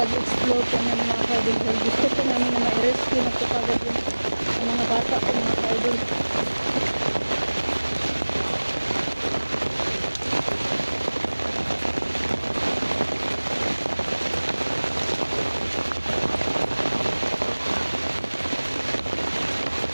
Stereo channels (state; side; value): inverted; both; correlation -1.00